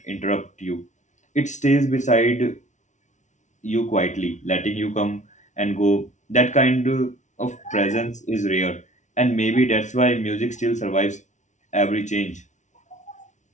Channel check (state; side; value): late; right; 0.35 ms